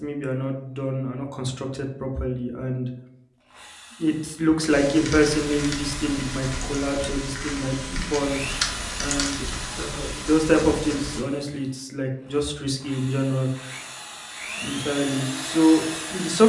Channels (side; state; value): both; identical; correlation 1.00